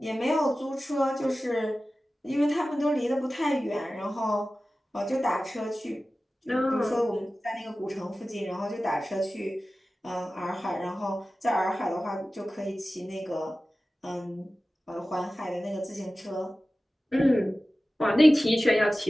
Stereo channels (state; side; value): normal; both; correlation 0.96